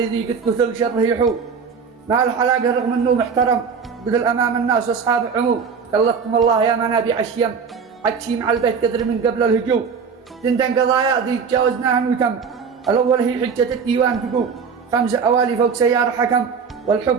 ذي قد كثر شره يحوم. مع الحلاقة رغم انه محترم، بذل امام الناس واصحاب عموم. كلفتكم الله يا منابع الشيم، عدشي مع البيت قدر من قبل الهجوم. تندن قضايا ذي تجاوزناها وتم، الاول هي حجة الديوان تقوم. 5 أوالي فوق سيارة حكم،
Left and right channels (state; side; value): quieter; left; 6.0 dB